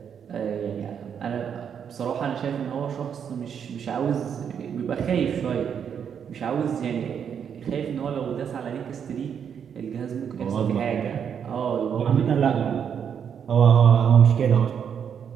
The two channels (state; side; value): quieter; left; 7.8 dB